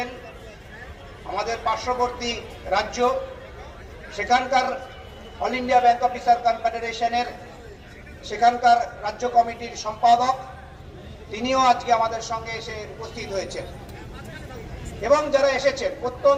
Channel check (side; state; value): both; identical; correlation 1.00